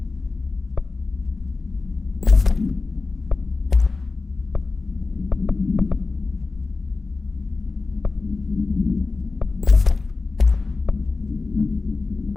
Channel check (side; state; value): right; quieter; 3.9 dB